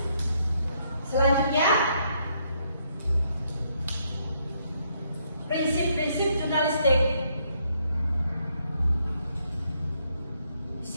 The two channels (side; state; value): both; inverted; correlation -0.73